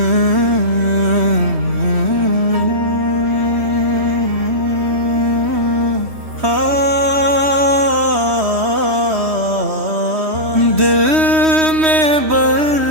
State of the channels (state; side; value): late; left; 3.1 ms